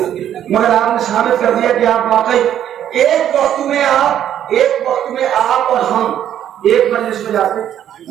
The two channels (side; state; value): left; quieter; 10.5 dB